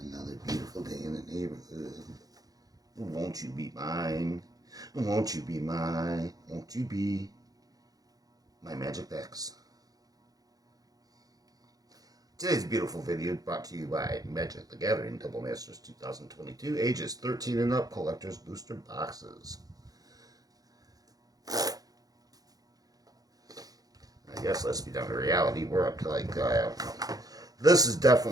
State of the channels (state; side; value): late; left; 0.18 ms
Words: beautiful day in the neighborhood. Won't you be mine? Won't you be mine? Won't you be my magic decks? Today's beautiful video brought to you by Magic the Gathering Double Masters 2022, ages 13 and up, collector's booster boxes. I guess let's be down to reality. We're up to this is